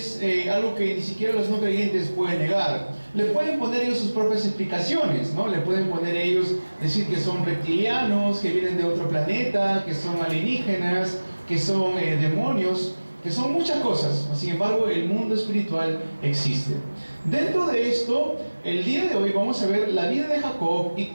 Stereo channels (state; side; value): inverted; both; correlation -1.00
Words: algo que ni siquiera los no creyentes pueden negar. Le pueden poner ellos sus propias explicaciones, ¿no? Le pueden poner ellos, decir que son reptilianos, que vienen de otro planeta, que son alienígenas, que son demonios, que son muchas cosas. Sin embargo, el mundo espiritual existe. Dentro de esto, el día de hoy vamos a ver la vida de Jacob y